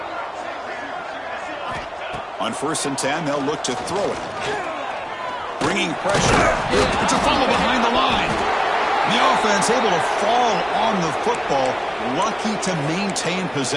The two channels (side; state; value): both; identical; correlation 1.00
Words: On 1st and 10, they'll look to throw it. Bringing pressure. It's a fumble behind the line. The offense able to fall on the football. Lucky to maintain